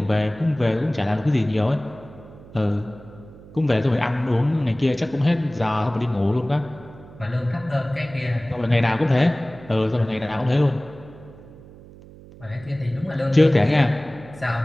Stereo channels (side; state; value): right; noise; hum, 20 dB below the sound